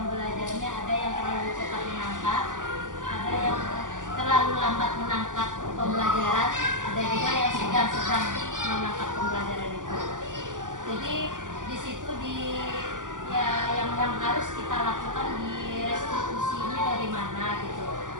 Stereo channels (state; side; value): late; left; 0.88 ms